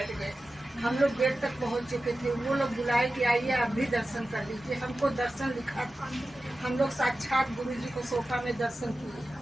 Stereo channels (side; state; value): both; normal; correlation 0.94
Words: गए। हम लोग गेट तक पहुँच चुके थे। वो लोग बुलाए कि आइए आप भी दर्शन कर लीजिए। हमको दर्शन लिखा था, हम लोग साक्षात गुरु जी को सोफा में दर्शन किए।